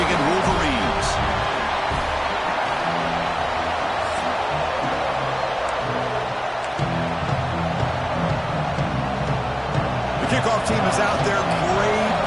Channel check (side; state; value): both; identical; correlation 1.00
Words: Wolverines. The kickoff team is out there. Great